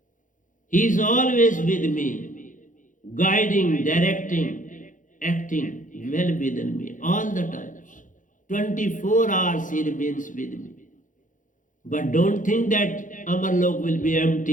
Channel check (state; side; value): late; right; 0.38 ms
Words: He is always with me, guiding, directing, acting well within me all the times. 24 hours he remains with me. But don't think that Amarlok will be